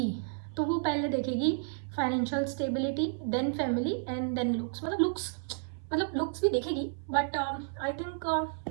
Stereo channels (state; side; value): silent; left; 57 dB below the other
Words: तो वो पहले देखेगी financial stability, then family and then looks. मतलब लुक्स भी देखेगी बट आई थिंक